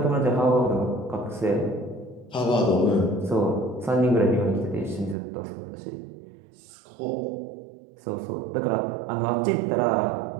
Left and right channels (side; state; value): left; drops out; at 5.2 s